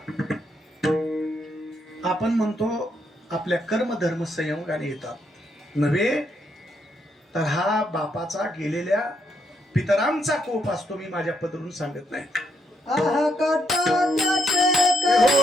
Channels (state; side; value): normal; both; correlation 0.76